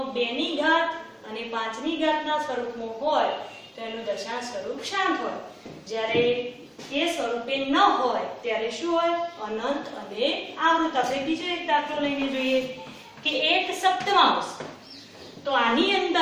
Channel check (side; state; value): both; identical; correlation 1.00